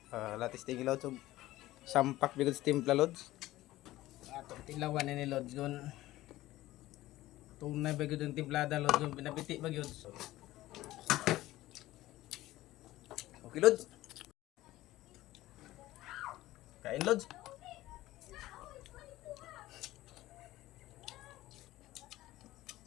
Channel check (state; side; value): quieter; right; 16.5 dB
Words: Latis tingin, Lods. Sampak bigod sa timpla, Lods. Ato, tilawan ni Lods. Gun. Tunay bigod yung timplada, Lods. Gun, pinapiti bigod. Okay, Lods. Kain, Lods.